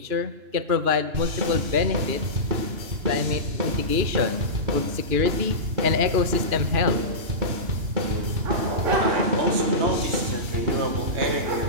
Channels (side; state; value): left; late; 2.9 ms